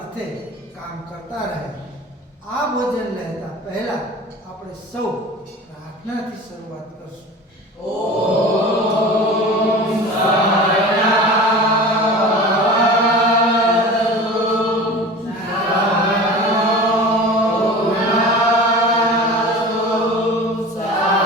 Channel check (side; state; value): both; normal; correlation 0.36